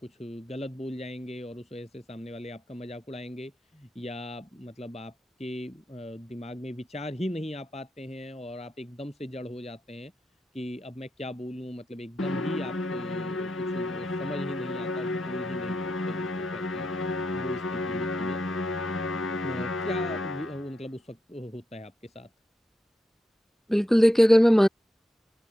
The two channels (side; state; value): both; normal; correlation 0.86